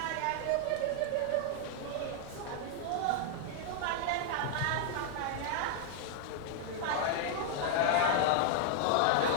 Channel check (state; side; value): different; both; correlation 0.00